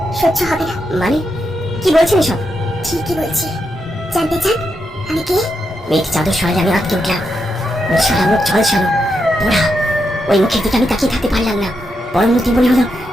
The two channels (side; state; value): both; normal; correlation 0.84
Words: সহ্য হবে না। মানে কি বলছেন এসব? ঠিকই বলছি। জানতে চান আমি কে? মেয়েটি চাদর সরালে আমি আটকে উঠলাম। ওর সারা মুখ ঝলসানো পোড়া। ওই মুখের দিকে আমি তাকিয়ে থাকতে পারলাম না। পরমুহূর্তে মনে হলো